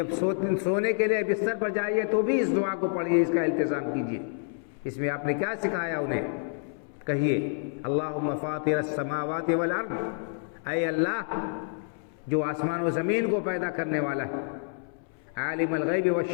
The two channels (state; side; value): silent; right; 59 dB below the other